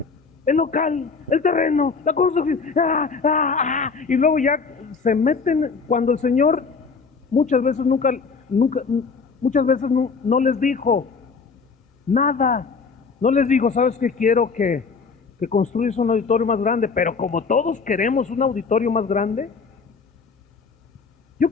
El local, el terreno, la construcción, y luego ya se meten cuando el Señor muchas veces muchas veces no les dijo nada. No les digo, ¿sabes qué? Quiero que construyas un auditorio más grande, pero como todos queremos un auditorio más grande, yo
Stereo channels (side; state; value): right; quieter; 5.0 dB